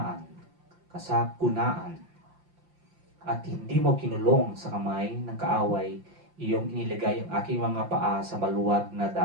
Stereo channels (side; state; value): left; late; 5.7 ms